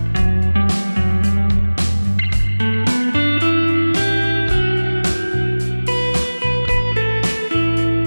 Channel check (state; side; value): inverted; both; correlation -1.00